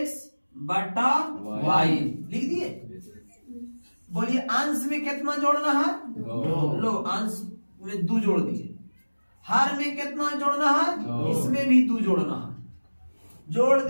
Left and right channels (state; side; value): inverted; both; correlation -1.00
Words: बटा y लिख दिए। बोलिए अंश में कितना जोड़ना है? 2। लो अंश में 2 जोड़ दिए। हर में कितना जोड़ना है? 2। इसमें भी 2 जोड़ना है। जोड़